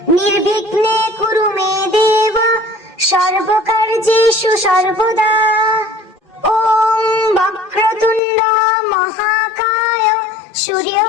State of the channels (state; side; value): drops out; right; at 8.2 s